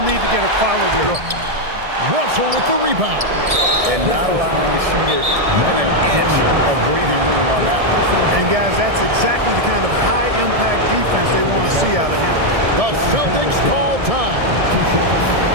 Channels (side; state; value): left; late; 1.7 ms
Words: need to get a quality look. Russell with the rebound. And not allowing the shooter even an inch of breathing room on that one. And, guys, that's exactly the kind of high-impact defense they want to see out of him. The Celtics call time.